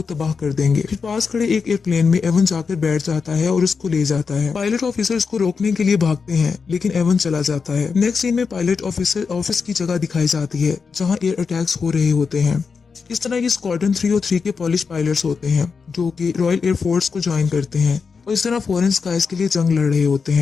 तबाह कर देंगे। फिर पास खड़े एक एयरप्लेन में एवन जाकर बैठ जाता है और उसको ले जाता है। पायलट ऑफिसर उसको रोकने के लिए भागते हैं, लेकिन एवन चला जाता है। नेक्स्ट सीन में पायलट ऑफिसर ऑफिस की जगह दिखाई जाती है जहाँ एयर अटैक्स हो रहे होते हैं। इस तरह ये स्क्वाड्रन 3 और 3 के पॉलिश पायलट्स होते हैं जो कि रॉयल एयरफोर्स को ज्वाइन करते हैं और इस तरह फॉरेन स्काइज के लिए जंग लड़ रहे होते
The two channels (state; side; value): quieter; right; 5.3 dB